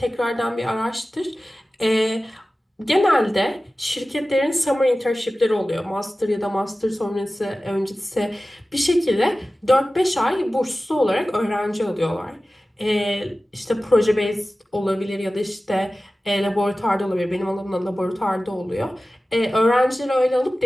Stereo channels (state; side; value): normal; both; correlation 0.96